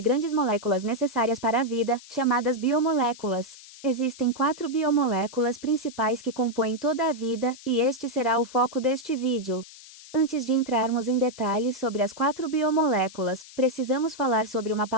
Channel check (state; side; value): noise; left; hiss, 18 dB below the sound